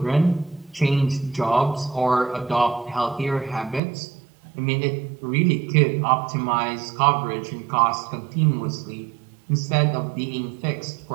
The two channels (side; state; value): left; drops out; at 3.8 s